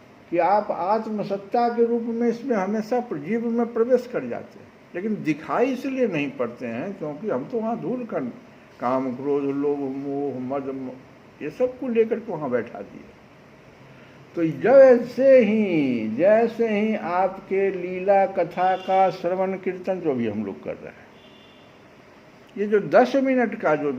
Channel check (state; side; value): identical; both; correlation 1.00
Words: कि आप आत्मसत्ता के रूप में इसमें हमेशा जीव में प्रवेश कर जाते हैं, लेकिन दिखाई इसलिए नहीं पड़ते हैं क्योंकि हम तो वहाँ धूल कर काम क्रोध लोभ मोह मद ये सब को लेकर के वहाँ बैठा दिए। तो जैसे ही आपके लीला कथा का श्रवण कीर्तन जो भी हम लोग कर रहे हैं, ये जो 10 मिनट का जो